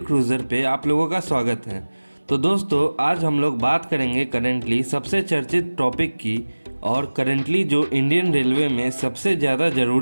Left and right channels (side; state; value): both; inverted; correlation -1.00